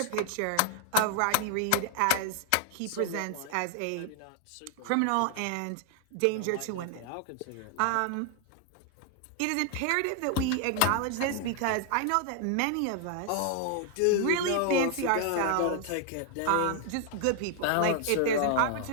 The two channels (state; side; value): different; both; correlation 0.00